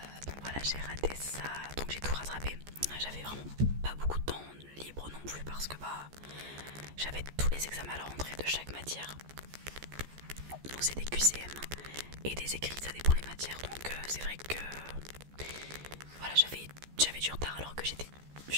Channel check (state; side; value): late; left; 14 ms